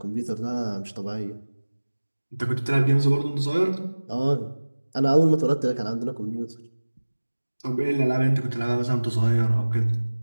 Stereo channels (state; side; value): inverted; both; correlation -1.00